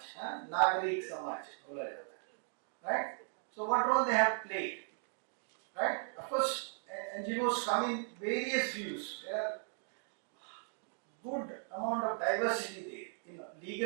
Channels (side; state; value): left; silent; 53 dB below the other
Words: Nagarik Samaj, right? So what role they have played, right? Of course, NGOs come in various views. There are good amount of diversity there, in